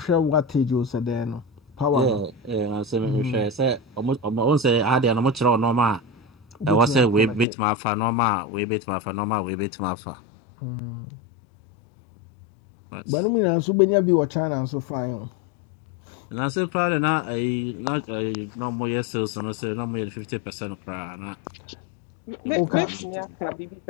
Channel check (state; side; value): drops out; right; at 7.5 s